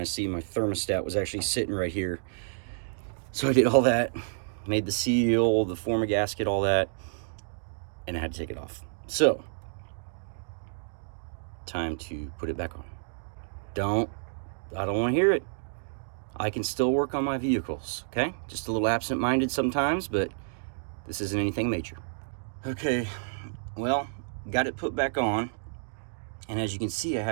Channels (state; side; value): silent; left; digital silence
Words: see my thermostat was actually sitting right here. So I did all that, made the seal, the former gasket, all that, and I had to take it off. So, time to put it back on. I don't want to hear it. I can still work on my vehicles, okay? Just a little absent-minded sometimes, but this isn't anything major. Okay, well, got it put back on, and as you can see, I